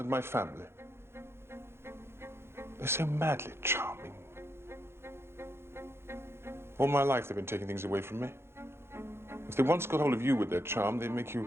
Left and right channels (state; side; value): late; left; 0.12 ms